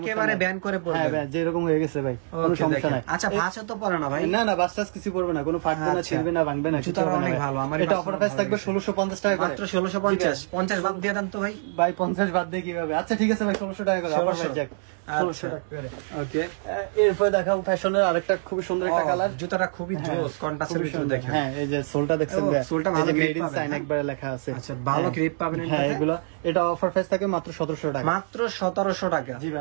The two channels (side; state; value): left; silent; 61 dB below the other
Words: ব্যান করে পড়বে। হ্যাঁ ভাই, যেরকম হয়ে গেছে ভাই, কোনো ওকে, সমস্যা দেখেন। নাই। আচ্ছা, ভাঁজে তো পড়ে না ভাই? না না, বাসটাস কিছু করবে না, কোনো ফাটবে না, ছিড়বে না, ভাঙবে না। জুতাটা অনেক ভালো। আমার এটা অফার প্রাইস থাকবে 1650 টাকা করে। মাত্র 1650। 50 বাদ দিয়ে দেন তো ভাই। ভাই 50 বাদ দিয়ে কিভাবে? আচ্ছা ঠিক আছে ভাই, 1600 টাকা করে। 1600। 1600 টাকা করে। ওকে, এরপর দেখাবো ফ্যাশনের আরেকটা খুবই সুন্দর একটা কালার। জুতাটা খুবই জোস, কন্ট্রাস্টের ভিতরে দেখেন। হ্যাঁ, এই যে সোলটা দেখছেন, সোলটা ভালো গ্রিপ গ্রেড পাবেন, একবারে লেখা আছে। আচ্ছা, ভালো গ্রিপ পাবেন হ্যাঁ, এটাতে। এগুলো এটা অফার প্রাইস থাকে মাত্র 1700 টাকা। মাত্র 1700 টাকা। জি